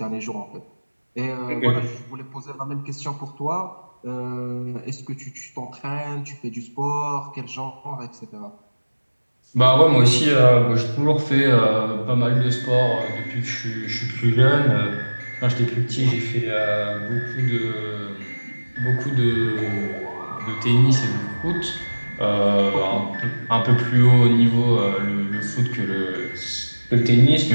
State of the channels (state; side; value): inverted; both; correlation -1.00